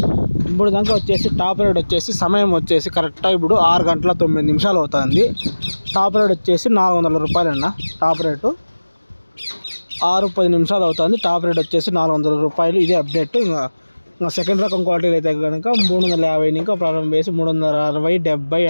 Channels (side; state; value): both; inverted; correlation -1.00